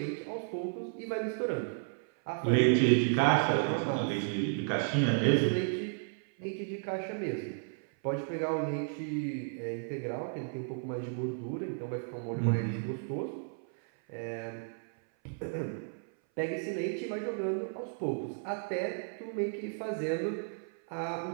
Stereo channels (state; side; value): silent; left; 56 dB below the other